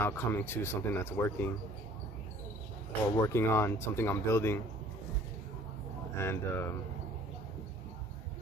coming to something that's working, or working on something I'm building, and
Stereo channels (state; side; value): normal; both; correlation 0.52